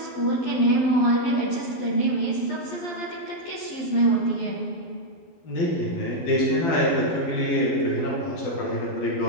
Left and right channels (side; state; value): right; late; 11 ms